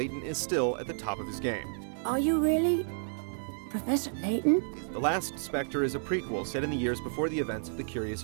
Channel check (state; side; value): silent; left; digital silence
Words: is still at the top of his game. Are you really Professor Layton? The Last Spectre is a prequel set in the years before the events of the Curious